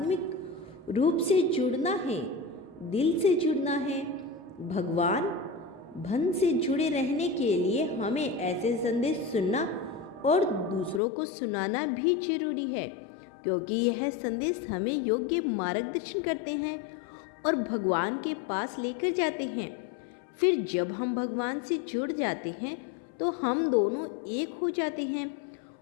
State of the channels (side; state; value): right; drops out; at 11.0 s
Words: रूप से जुड़ना है, दिल से जुड़ना है। भगवान भन से जुड़े रहने के लिए हमें ऐसे संदेश सुनना और दूसरों को सुनाना भी जरूरी है, क्योंकि यह संदेश हमें योग्य मार्गदर्शन करते हैं और भगवान के पास लेकर जाते हैं। फिर जब हम भगवान से जुड़ जाते हैं तो हम दोनों एक हो जाते हैं